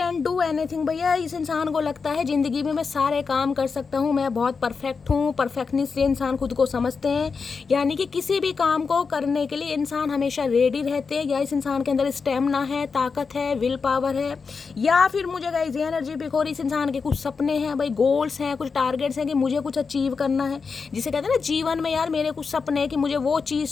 do anything. भैया इस इंसान को लगता है ज़िंदगी में मैं सारे काम कर सकता हूँ, मैं बहुत परफेक्ट हूँ। परफेक्टनेस से इंसान खुद को समझते हैं, यानी कि किसी भी काम को करने के लिए इंसान हमेशा रेडी रहते हैं। या इस इंसान के अंदर स्टेमिना है, ताकत है, विल पावर है। या फिर मुझे गाइस ये एनर्जी पिक हो रही, इस इंसान के कुछ सपने हैं भाई, गोल्स हैं, कुछ टारगेट्स हैं कि मुझे कुछ अचीव करना है। जिसे कहते हैं ना जीवन में यार मेरे कुछ सपने हैं कि मुझे वो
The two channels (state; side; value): quieter; right; 5.1 dB